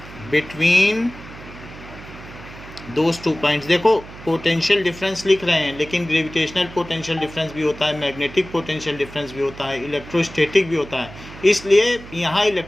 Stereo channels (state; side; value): noise; right; hum, 16 dB below the sound